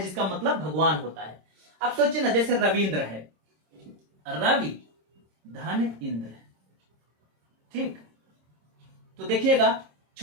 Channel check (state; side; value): late; left; 26 ms